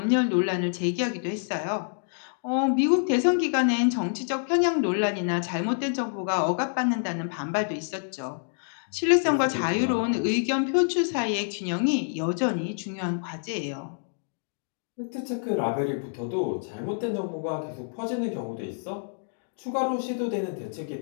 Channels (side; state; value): right; silent; digital silence